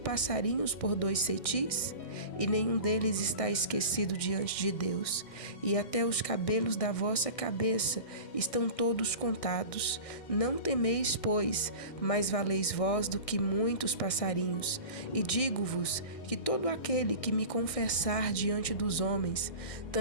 por 2 cetis? E nenhum deles está esquecido diante de Deus. E até os cabelos da vossa cabeça estão todos contados. Não temeis, pois, mais valeis vós do que muitos passarinhos. E digo-vos que todo aquele que me confessar diante dos homens,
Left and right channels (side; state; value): right; late; 1.6 ms